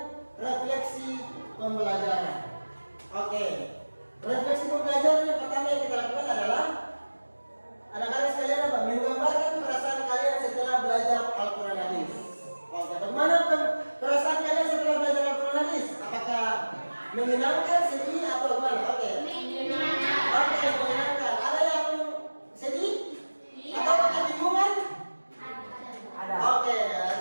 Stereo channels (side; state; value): both; inverted; correlation -1.00